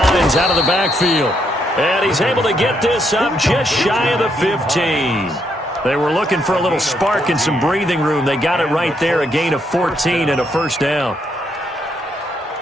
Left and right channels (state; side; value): normal; both; correlation 0.76